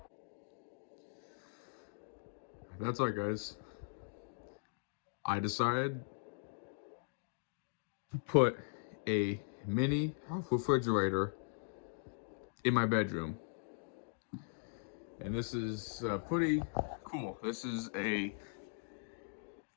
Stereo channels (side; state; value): right; silent; digital silence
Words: That's all, guys. I decided to put a mini refrigerator in my bedroom, and this is pretty cool. This is a